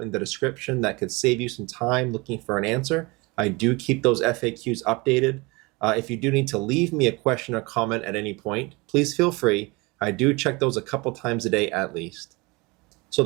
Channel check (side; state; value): left; quieter; 25.7 dB